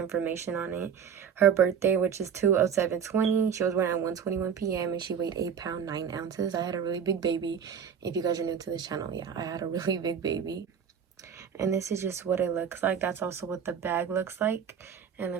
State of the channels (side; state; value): left; quieter; 7.6 dB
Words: on it. Her birthday, which is 2/07/20. She was born at 1:21 p.m. and she weighed 8 pounds 9 ounces. I had a really big baby. If you guys are new to this channel, yeah, I had a really big baby. And this is just what it looks like. That's also what the bag looks like. And